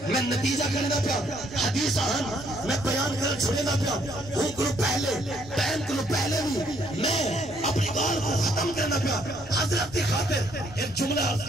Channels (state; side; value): noise; right; rumble, 21 dB below the sound